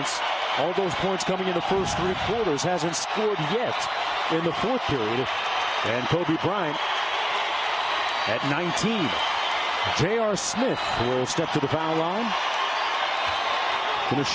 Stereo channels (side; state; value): both; identical; correlation 1.00